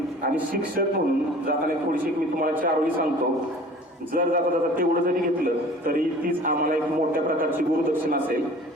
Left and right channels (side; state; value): both; normal; correlation 0.46